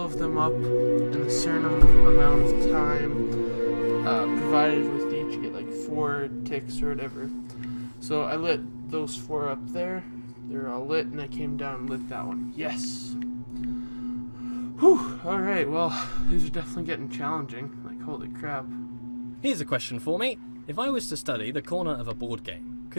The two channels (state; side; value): inverted; both; correlation -1.00